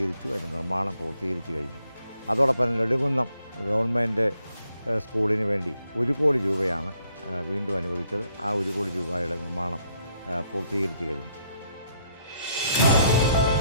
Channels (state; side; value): inverted; both; correlation -0.71